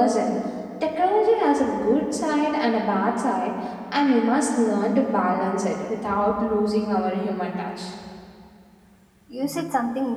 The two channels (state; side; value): identical; both; correlation 1.00